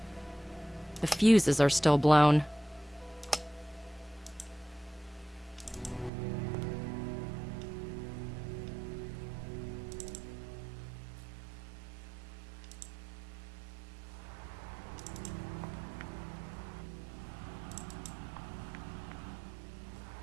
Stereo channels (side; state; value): left; drops out; at 6.1 s